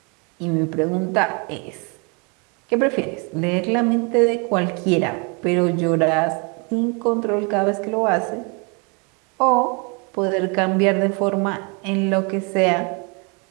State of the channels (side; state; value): left; quieter; 33.3 dB